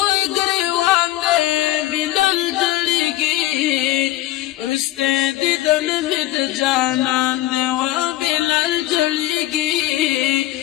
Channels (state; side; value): quieter; right; 15.4 dB